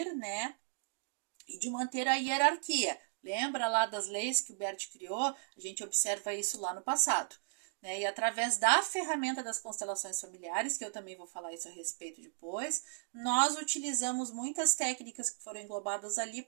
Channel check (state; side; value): silent; left; digital silence